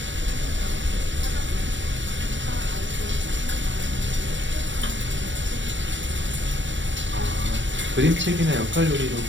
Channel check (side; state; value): left; late; 0.54 ms